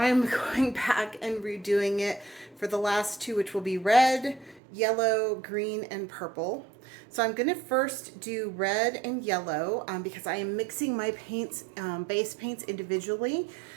going back and redoing it for the last two, which will be red, yellow, green, and purple. So I'm going to first do red and yellow because I am mixing my paints, base paints individually.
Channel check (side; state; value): left; drops out; at 4.6 s